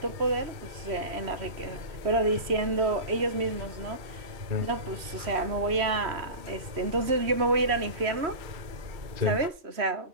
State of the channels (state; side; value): late; left; 3.1 ms